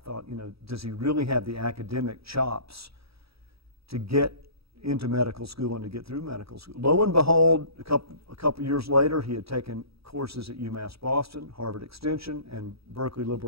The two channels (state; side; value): late; left; 0.77 ms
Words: you know, does he really have the academic chops to get into medical school and to get through medical school? Lo and behold, a couple years later, he had taken courses at UMass Boston, Harvard Extension, and Berkeley